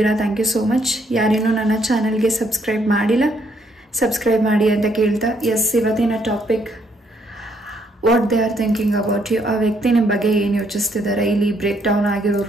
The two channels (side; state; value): both; normal; correlation 0.70